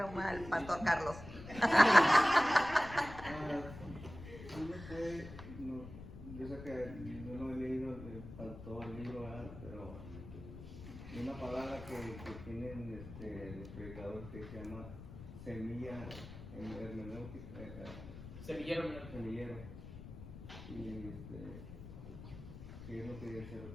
el pastor Carlos. Yo sé que yo no he leído, todo el libro, ¿verdad? Pero hay una palabra que tienen los predicadores que se llama semilla hermenéutica. Semillero. Y ¿qué es lo que dice?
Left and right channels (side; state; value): left; noise; rumble, 13 dB below the sound